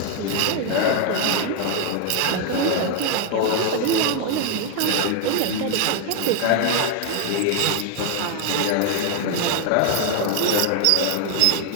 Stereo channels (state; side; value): different; both; correlation 0.00